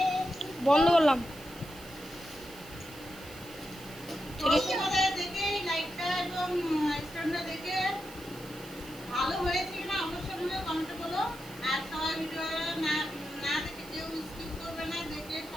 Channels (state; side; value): noise; right; hiss, 18 dB below the sound